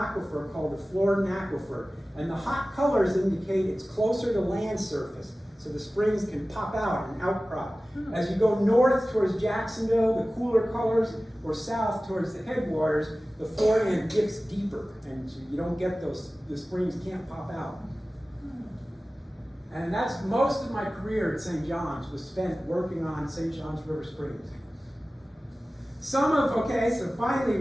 called the Floridan Aquifer. And the hot colors indicate it's closer to land surface, so the springs can pop out and outcrop. As you go north towards Jacksonville, the cooler colors, or south towards the headwaters, the Floridan dips deeper, and you don't get those, the springs can't pop out. And that's most of my career at St. John's was spent working on St. John's River Springs. So finally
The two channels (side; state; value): both; normal; correlation 0.96